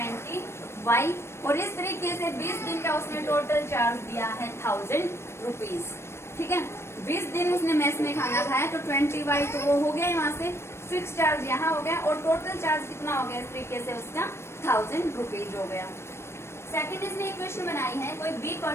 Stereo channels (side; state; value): right; late; 0.12 ms